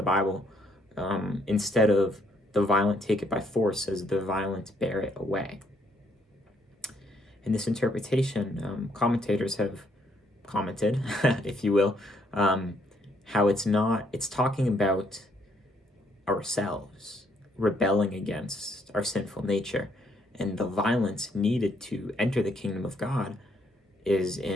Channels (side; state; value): both; normal; correlation 0.70